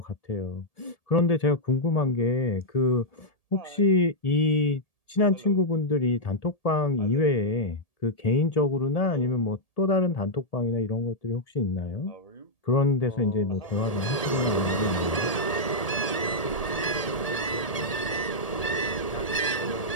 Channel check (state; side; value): late; right; 1.8 ms